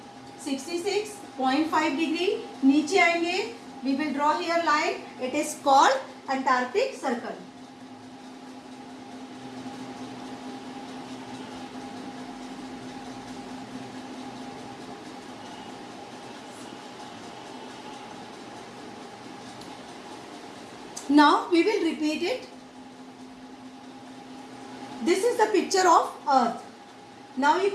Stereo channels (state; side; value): identical; both; correlation 1.00